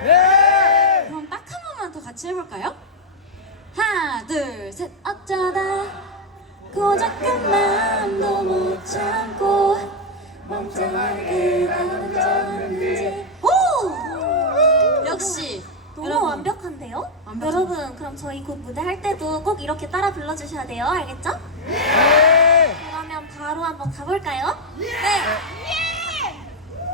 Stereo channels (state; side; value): normal; both; correlation 0.00